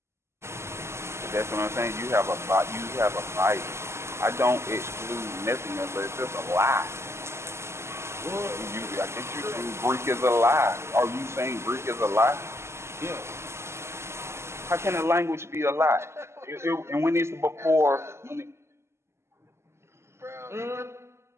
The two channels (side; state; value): left; late; 0.13 ms